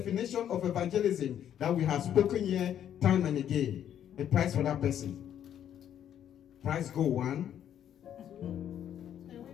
of evangelism that we have spoken here time and again. A prize for that person. Prize go one.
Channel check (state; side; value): quieter; right; 10.0 dB